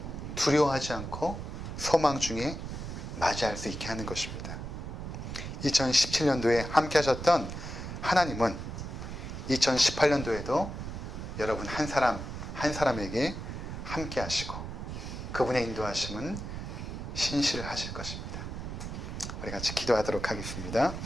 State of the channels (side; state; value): right; noise; rumble, 7 dB below the sound